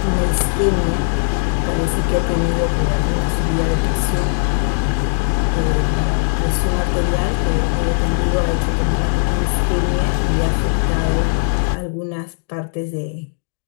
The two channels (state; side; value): silent; right; digital silence